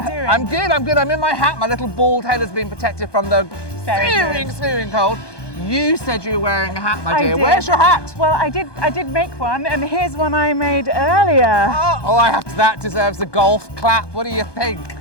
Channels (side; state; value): right; late; 1.2 ms